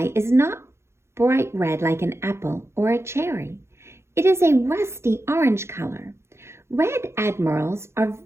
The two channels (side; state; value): left; late; 0.13 ms